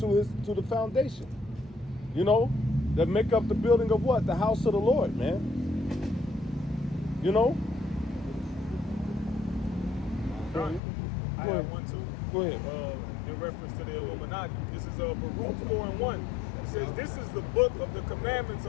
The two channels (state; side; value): drops out; right; at 10.8 s